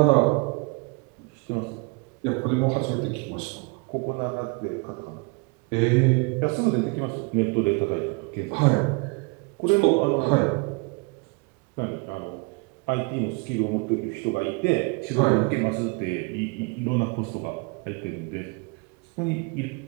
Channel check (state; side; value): quieter; left; 30.7 dB